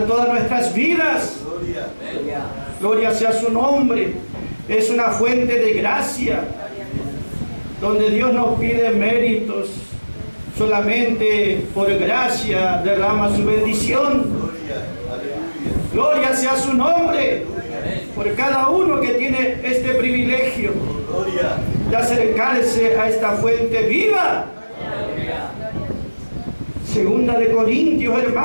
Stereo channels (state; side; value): inverted; both; correlation -1.00